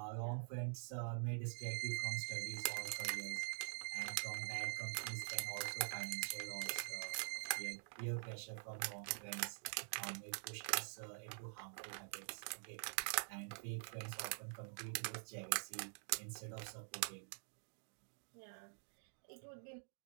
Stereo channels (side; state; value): left; silent; digital silence